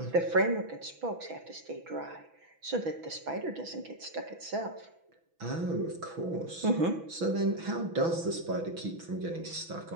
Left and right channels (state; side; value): late; left; 6.1 ms